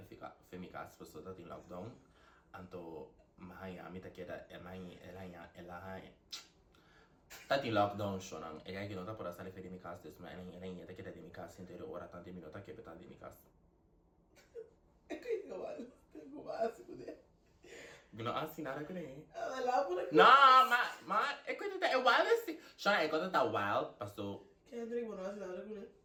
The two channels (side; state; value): both; identical; correlation 1.00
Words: femikas paso ta ting lockdown anto mahaya mi ta keda elahay ta ting lockdown siya nang kaya kinota para sa femikas des ma elahanya ta keda demikas intero ora tanti minuta ke peta demikas É que igual, tem como assim, né? Gino nada ko eh. Ela lá por aqui. No, é coisa da wild assim. Siya é coisa da wild paso Kendrick, mano, assim nada com ele.